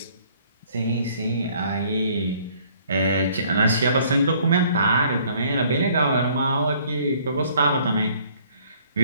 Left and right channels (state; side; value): inverted; both; correlation -0.60